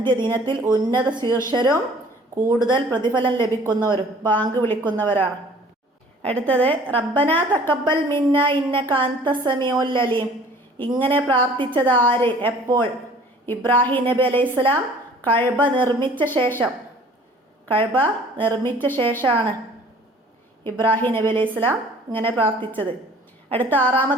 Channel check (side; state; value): both; normal; correlation 0.51